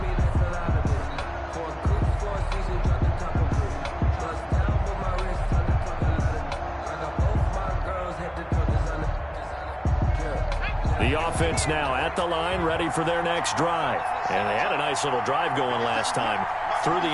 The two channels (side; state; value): both; identical; correlation 1.00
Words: The offense now at the line, ready for their next drive. And they had a nice little drive going last time. Threw the